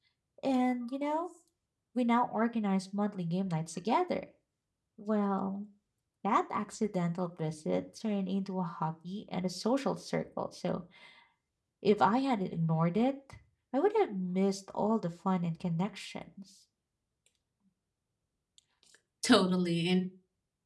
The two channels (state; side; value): identical; both; correlation 1.00